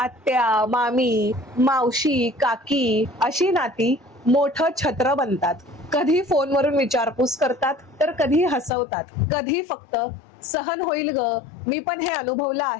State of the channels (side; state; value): right; drops out; at 8.7 s